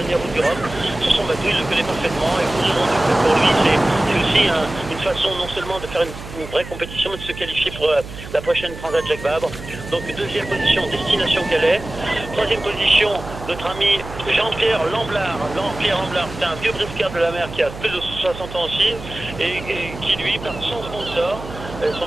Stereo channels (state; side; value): noise; right; hum, 13 dB below the sound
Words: route du Rhum. Sur son bateau, il le connaît parfaitement et pour lui, c'est aussi une façon non seulement de faire une vraie compétition, mais de se qualifier pour la prochaine Transat Jacques Vabre. Donc deuxième position, Destination Calais. Troisième position, notre ami Jean-Pierre Lamblard. Jean-Pierre Lamblard, c'est un vieux briscard de la mer qui a plus de 60 ans aussi et qui lui, par son sponsor, son